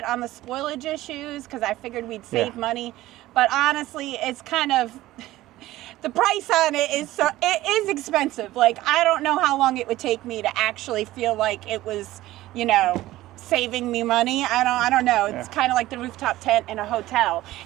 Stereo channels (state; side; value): quieter; left; 16.2 dB